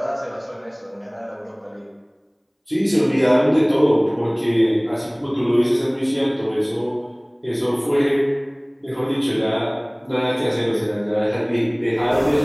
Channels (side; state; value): both; identical; correlation 1.00